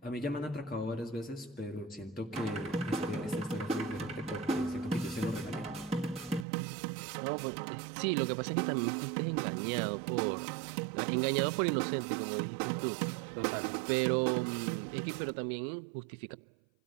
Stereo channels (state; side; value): drops out; left; at 6.5 s